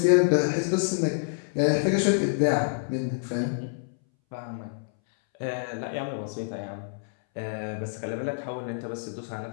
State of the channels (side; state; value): right; silent; 60 dB below the other